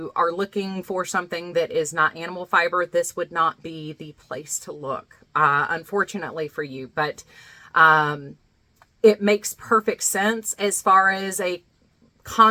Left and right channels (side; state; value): both; identical; correlation 1.00